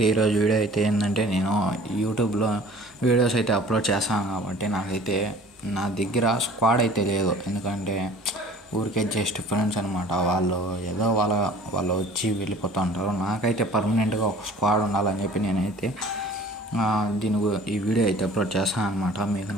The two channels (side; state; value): both; normal; correlation 0.48